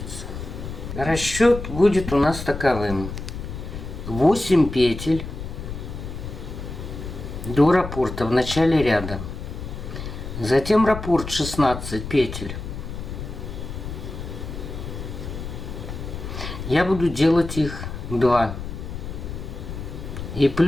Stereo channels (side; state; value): left; noise; rumble, 8 dB below the sound